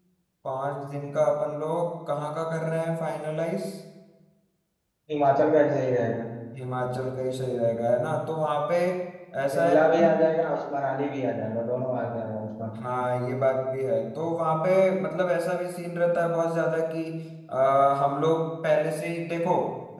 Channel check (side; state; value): both; identical; correlation 1.00